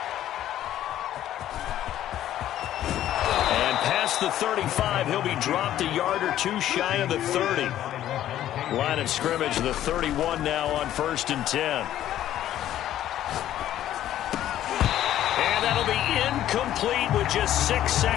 And past the 35, he'll be dropped a yard or two shy of the 30. Line of scrimmage, the 31 now on 1st and 10. And that'll be incomplete with just 6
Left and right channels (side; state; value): right; quieter; 12.3 dB